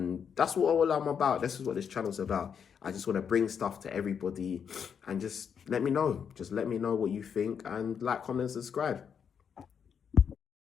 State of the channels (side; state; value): right; quieter; 7.3 dB